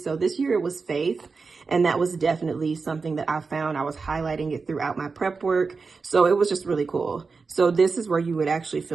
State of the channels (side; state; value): left; quieter; 4.6 dB